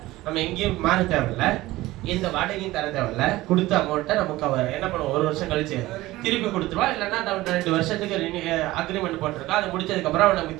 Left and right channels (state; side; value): quieter; left; 17.9 dB